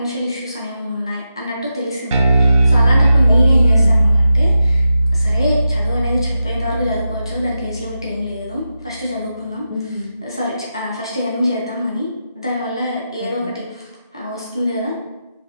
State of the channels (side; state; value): both; inverted; correlation -0.89